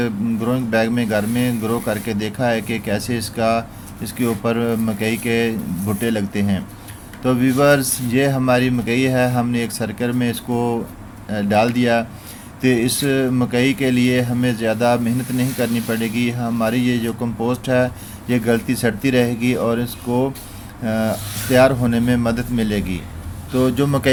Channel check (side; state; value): both; identical; correlation 1.00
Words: ग्रोइंग बैग में घर में ग्रो करके देखा है कि कैसे इसके ऊपर मकई के भुट्टे लगते हैं। तो व्यूवर्स, ये हमारी मकई है, हमने एक सर्कल में इसको डाल दिया। तो इस मकई के लिए हमें ज़्यादा मेहनत नहीं करनी पड़ेगी। हमारी ये जो कंपोस्ट है ये गलती सड़ती रहेगी और इसको तैयार होने में मदद मिलेगी। तो जो